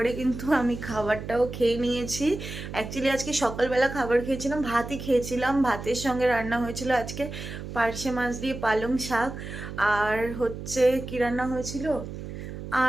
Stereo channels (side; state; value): right; noise; hum, 9 dB below the sound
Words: কিন্তু আমি খাবারটাও খেয়ে নিয়েছি। অ্যাকচুয়ালি আজকে সকালবেলা খাবার খেয়েছিলাম, ভাতই খেয়েছিলাম। ভাতের সঙ্গে রান্না হয়েছিল আজকে পার্শে মাছ দিয়ে পালং শাক, আর হচ্ছে কি রান্না হয়েছিল,